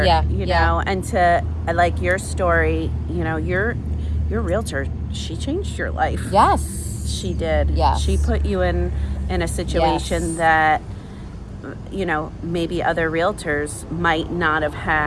Yeah, you know, and to, like your story, you know, your realtor, she changed your life. Yes. She did. Yes. She put you in a situation that, you know, maybe other realtors might not have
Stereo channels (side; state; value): both; identical; correlation 1.00